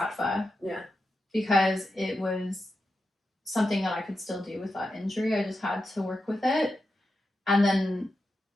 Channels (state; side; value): normal; both; correlation 0.89